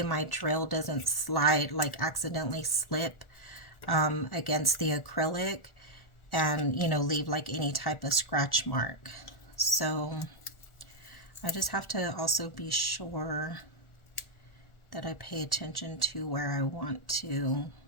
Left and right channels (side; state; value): right; late; 1.4 ms